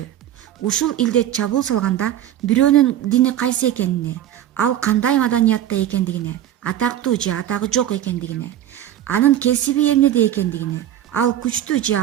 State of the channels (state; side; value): quieter; left; 11.6 dB